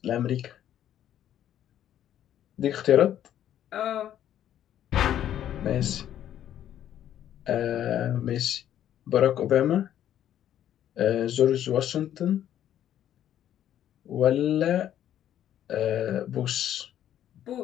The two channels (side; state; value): right; quieter; 11.0 dB